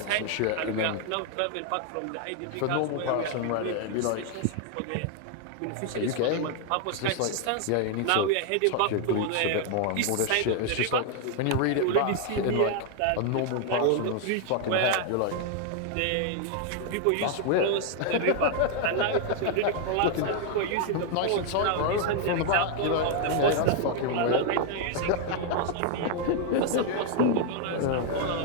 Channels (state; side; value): different; both; correlation 0.00